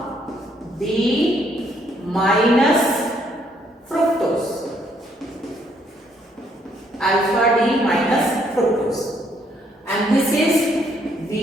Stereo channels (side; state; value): both; normal; correlation 0.70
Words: D minus fructose. Alpha D minus fructose, and this is